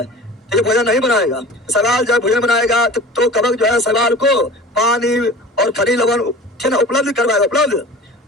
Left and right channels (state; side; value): normal; both; correlation 0.40